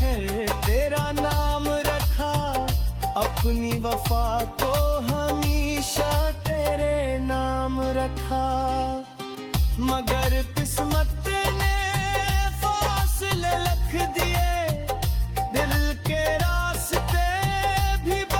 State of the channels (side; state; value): both; identical; correlation 1.00